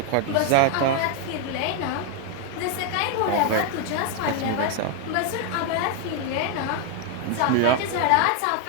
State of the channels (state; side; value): different; both; correlation 0.01